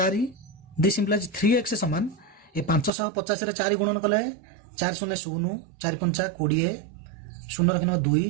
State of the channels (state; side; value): drops out; left; at 2.9 s